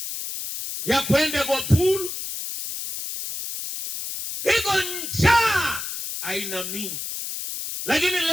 ya kwenda kwa pool, iko njaa aina mingi. Lakini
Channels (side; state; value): left; noise; hiss, 6 dB below the sound